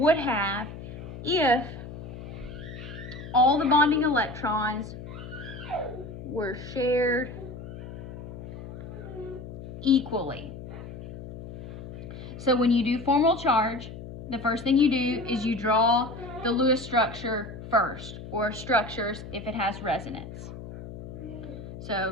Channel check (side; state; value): left; noise; hum, 11 dB below the sound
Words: have if all the bonding electrons were shared equally. So when you do formal charge, the first thing you do is you draw the Lewis structure first, or structures if it has resonance.